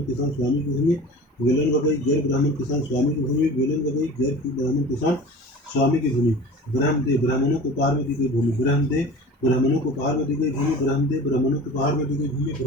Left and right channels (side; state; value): both; normal; correlation 0.39